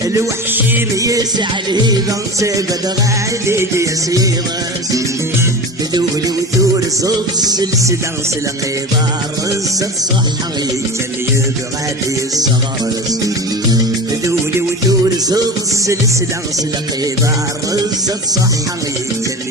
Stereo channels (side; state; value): both; normal; correlation 0.30